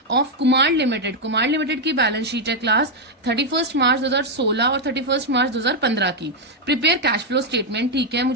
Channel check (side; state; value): both; normal; correlation 0.00